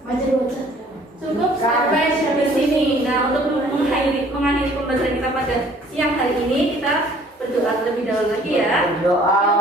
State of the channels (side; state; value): both; normal; correlation 0.56